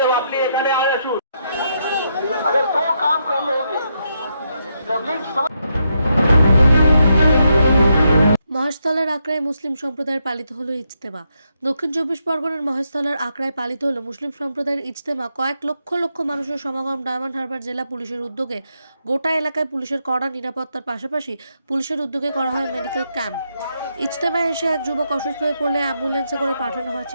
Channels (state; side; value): inverted; both; correlation -0.80